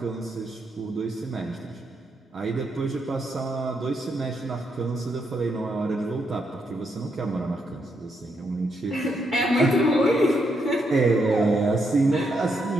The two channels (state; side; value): normal; both; correlation 0.79